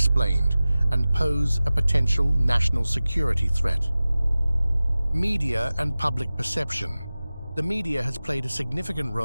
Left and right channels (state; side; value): inverted; both; correlation -0.97